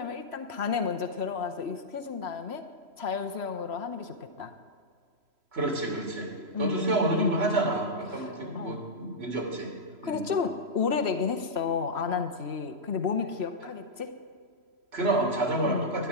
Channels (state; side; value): late; left; 3.0 ms